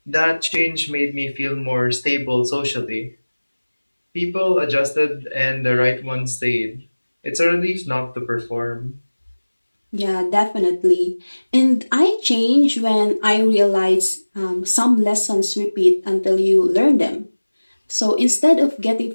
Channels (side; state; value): both; inverted; correlation -1.00